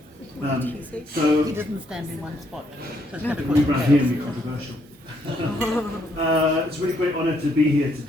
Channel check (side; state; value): both; normal; correlation 0.72